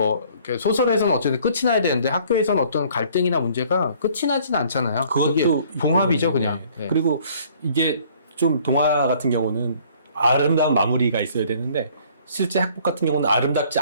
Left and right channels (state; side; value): inverted; both; correlation -0.57